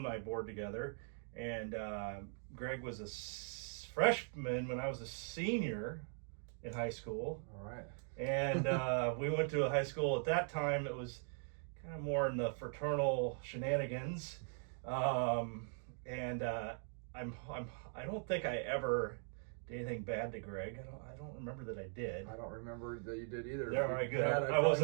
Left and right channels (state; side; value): silent; left; 51 dB below the other